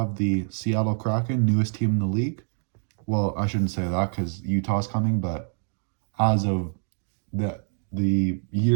the Seattle Kraken, newest team in the league. Well, I shouldn't say that because Utah's coming, but as of the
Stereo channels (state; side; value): silent; left; digital silence